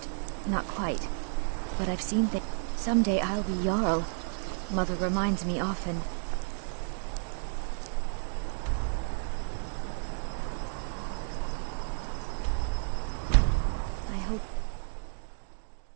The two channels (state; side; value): silent; left; digital silence